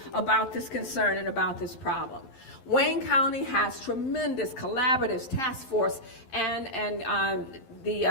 about this concern and about this problem. Wayne County has tremendous collaboratives, task force, and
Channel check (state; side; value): late; right; 11 ms